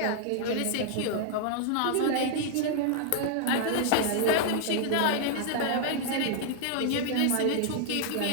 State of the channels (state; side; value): different; both; correlation 0.00